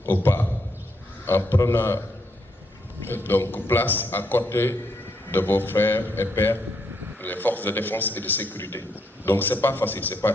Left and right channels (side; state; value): both; normal; correlation 0.76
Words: au pas en prenant donc place à côté de vos frères et pères, les forces de défense et de sécurité. Donc c'est pas facile, c'est pas